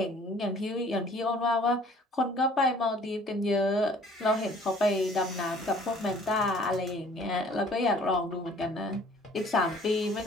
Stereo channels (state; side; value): normal; both; correlation 0.54